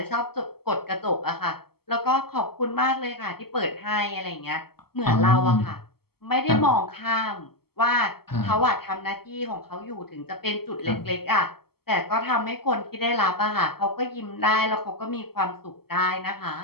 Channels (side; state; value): right; late; 0.95 ms